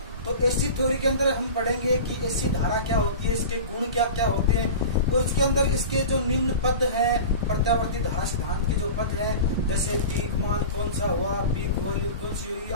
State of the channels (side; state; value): both; inverted; correlation -0.33